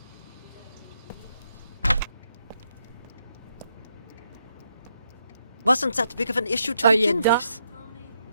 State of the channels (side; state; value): both; inverted; correlation -0.78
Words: Wasn't that big of an issue to Are you begin done? with?